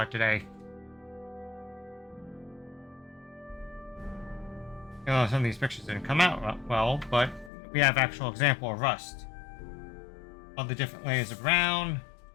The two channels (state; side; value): drops out; right; at 7.5 s